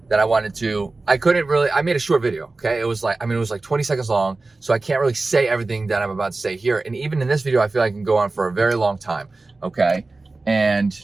that I made a short video, okay? It was like 20 seconds long, so I can't really say everything that I'm about to say here. And even in this video, I feel like I can go on for a very long time, okay? And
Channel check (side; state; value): left; quieter; 3.4 dB